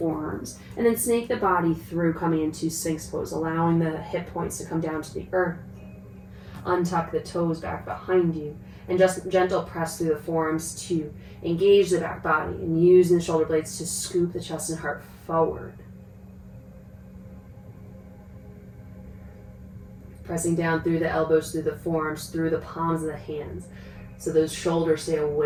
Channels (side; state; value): both; identical; correlation 1.00